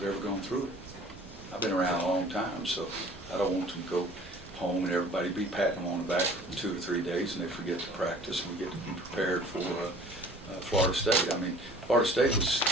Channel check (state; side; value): normal; both; correlation 0.48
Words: ever gone through it. I've been around a long time, so I don't want them to go home and everybody be patting them on the back for 2 or 3 days and they forget to practice and we get to be prepared for Florida State. I mean, Florida State was